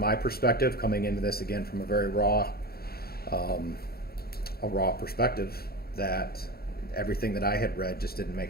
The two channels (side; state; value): right; late; 0.45 ms